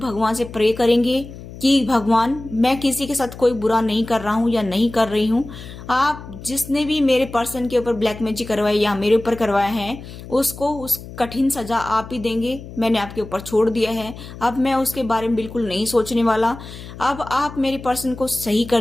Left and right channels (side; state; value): left; noise; hum, 14 dB below the sound